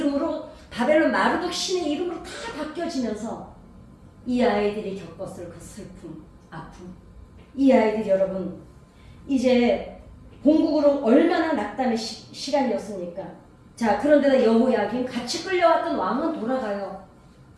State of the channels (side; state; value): both; identical; correlation 1.00